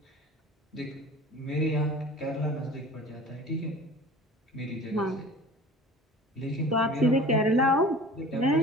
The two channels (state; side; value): normal; both; correlation 0.42